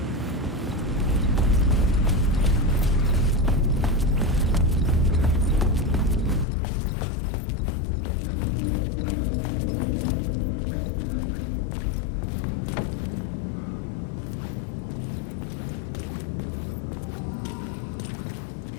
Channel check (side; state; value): right; drops out; at 6.5 s